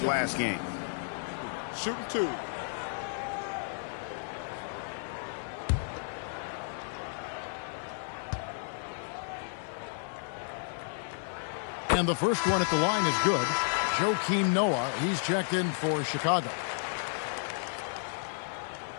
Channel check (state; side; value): silent; right; 56 dB below the other